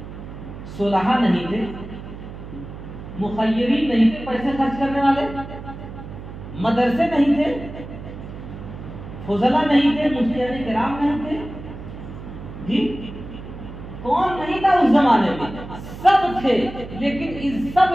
صلحاء نہیں تھے، مخیرین نہیں تھے، پیسے خرچ کرنے والے، مدرسے نہیں تھے، فضلاء نہیں تھے، مفتیان کرام نہیں تھے، جی کون نہیں تھا اس زمانے میں؟ سب تھے، لیکن ان سب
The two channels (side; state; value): right; noise; hum, 12 dB below the sound